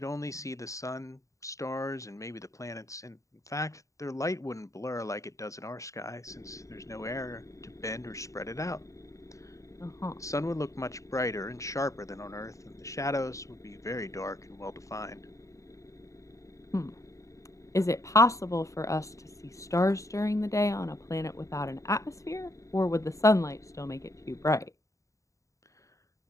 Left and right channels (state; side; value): late; right; 0.16 ms